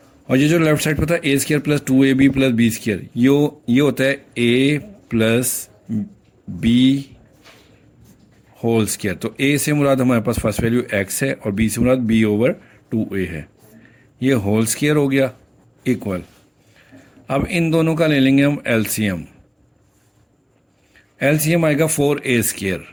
और ये जो लेफ्ट साइड पर था a² plus 2ab plus b², ये होता है a plus b whole square. तो a से मुराद हमारे पास फर्स्ट वैल्यू x है, और b से मुराद b ओवर 2a है। ये होल स्क्वायर हो गया इक्वल। अब इन दोनों का ले लेंगे हम एलसीएम। एलसीएम आएगा 4a²।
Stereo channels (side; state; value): both; identical; correlation 1.00